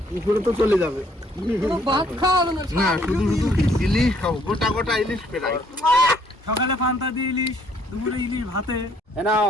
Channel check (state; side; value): normal; both; correlation 0.65